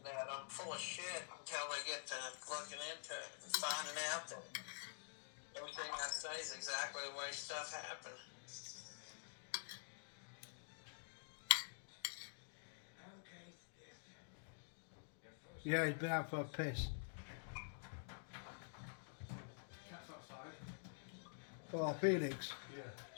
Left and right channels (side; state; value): right; silent; digital silence